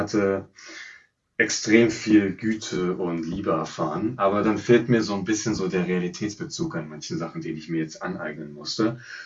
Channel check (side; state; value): both; identical; correlation 1.00